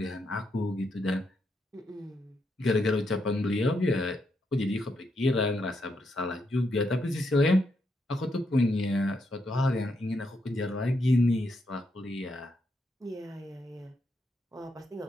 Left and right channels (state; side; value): normal; both; correlation 0.80